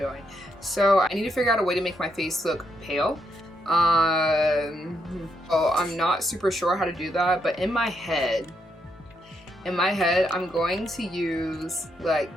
So I need to figure out a way to make my face look pale. So I'm not super sure how to do that, but in my head, I'm going to use like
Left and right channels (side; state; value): both; normal; correlation 0.78